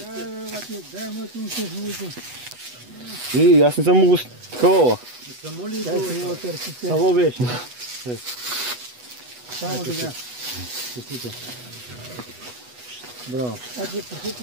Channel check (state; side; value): late; left; 8.1 ms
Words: И аз не съм могъл такова. Само беше. Само така. Браво. Значи, прехето